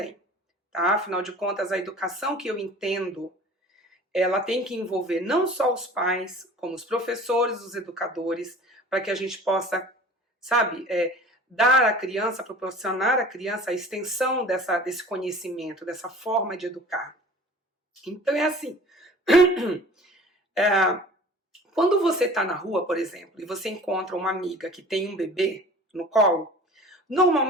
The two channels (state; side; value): normal; both; correlation 0.44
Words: tá? Afinal de contas, a educação que eu entendo, ela tem que envolver não só os pais, como os professores, os educadores, para que a gente possa, sabe, dar à criança, proporcionar à criança a extensão desse conhecimento, dessa forma de educar. Então é assim, quando você está na rua, por exemplo, e você encontra uma amiga que tem um bebê no colo,